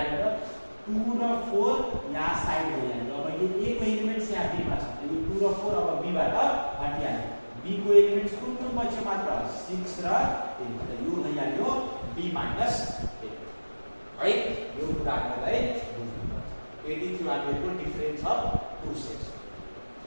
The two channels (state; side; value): inverted; both; correlation -1.00